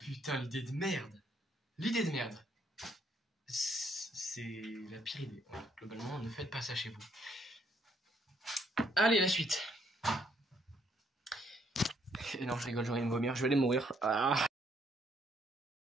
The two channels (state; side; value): normal; both; correlation 0.70